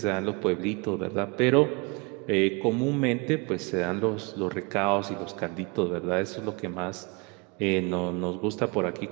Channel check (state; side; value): quieter; left; 29.4 dB